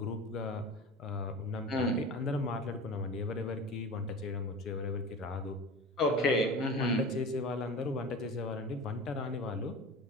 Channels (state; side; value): normal; both; correlation 0.34